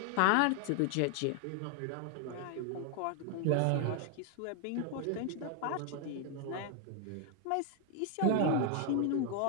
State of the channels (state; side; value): different; both; correlation 0.00